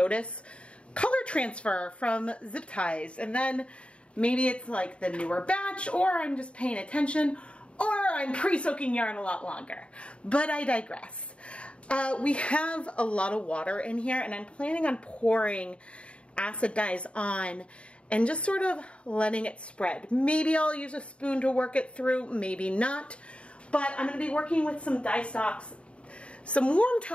color transfer from zip ties, and then maybe it's like the newer batch, or I'm just paying attention, or I'm pre-soaking yarn a lot longer. But I digress. We have a lot of water in here, and I'm planning on pouring acid dyes on and just sort of letting it spread. Maybe I'll use a spoon to work it through, maybe not. But I'm going to be working with some dyestocks, some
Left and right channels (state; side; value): late; right; 0.059 ms